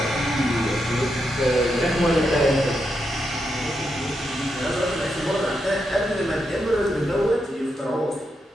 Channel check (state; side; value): normal; both; correlation 0.83